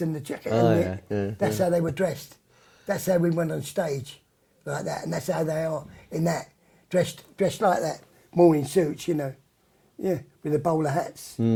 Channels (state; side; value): identical; both; correlation 1.00